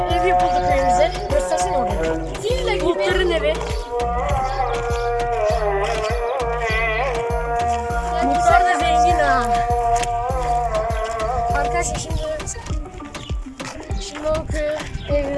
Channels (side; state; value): both; identical; correlation 1.00